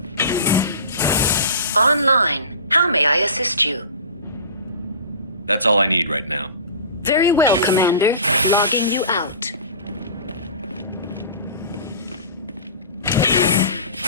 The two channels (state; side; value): inverted; both; correlation -0.37